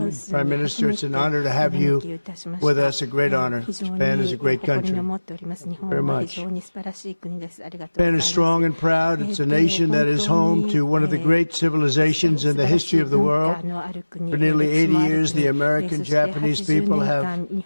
Prime Minister, it's an honor to have you with us, a great honor. Japan is a great country. Very much. Japan is strong and proud. It's a nation that is home to one of the great civilizations in the history of the world. For nearly 80 years, the American-Japanese people have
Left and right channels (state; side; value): inverted; both; correlation -1.00